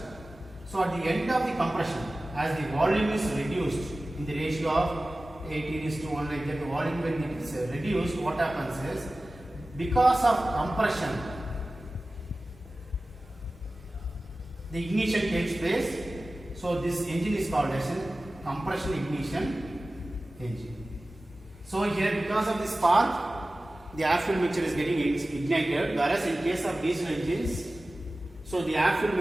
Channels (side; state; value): both; normal; correlation 0.96